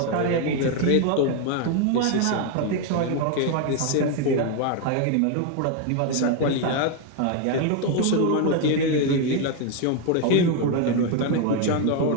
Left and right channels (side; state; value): both; different; correlation 0.01